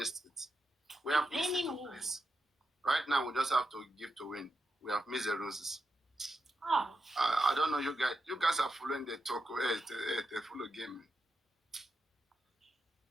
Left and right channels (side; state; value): both; normal; correlation 0.87